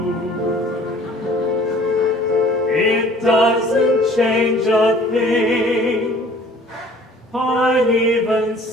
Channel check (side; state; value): both; normal; correlation 0.52